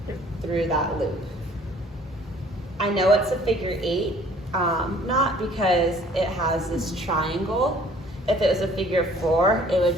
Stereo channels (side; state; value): both; normal; correlation 0.55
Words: through that loop. I know it's a figure 8, not because it has this triangle. If it was a figure 4, it would